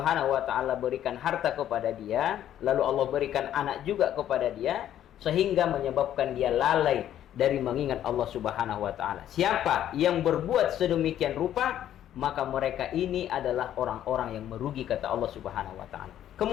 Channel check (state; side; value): quieter; right; 11.3 dB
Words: wa taala berikan harta kepada dia, lalu Allah berikan anak juga kepada dia, sehingga menyebabkan dia lalai dari mengingat Allah Subhanahu wa taala. Siapa yang berbuat sedemikian rupa, maka mereka ini adalah orang-orang yang merugi, kata Allah Subhanahu wa taala.